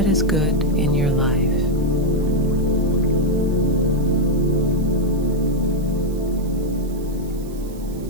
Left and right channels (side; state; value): right; noise; hiss, 23 dB below the sound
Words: is good in your life.